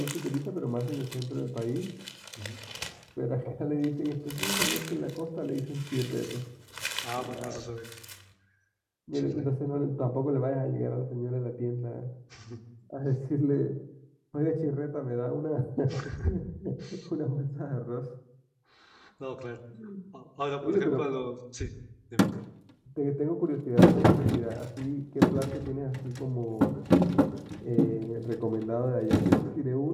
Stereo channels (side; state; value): both; identical; correlation 1.00